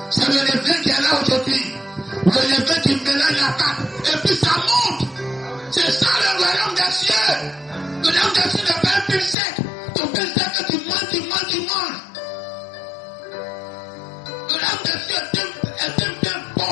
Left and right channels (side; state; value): right; drops out; at 9.3 s